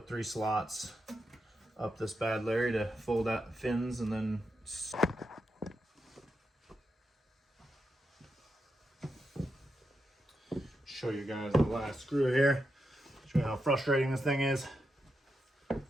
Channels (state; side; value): normal; both; correlation 0.86